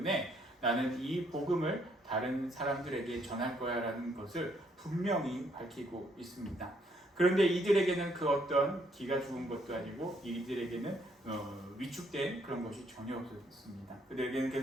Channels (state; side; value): normal; both; correlation 0.70